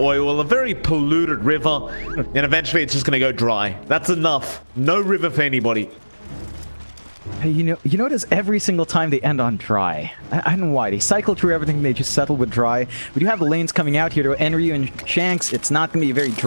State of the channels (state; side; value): inverted; both; correlation -1.00